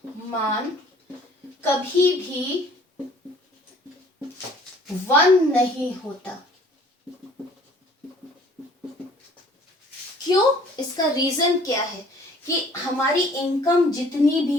कभी भी 1 नहीं होता। क्यों? इसका रीजन क्या है कि हमारी इनकम जितनी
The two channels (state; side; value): normal; both; correlation 0.54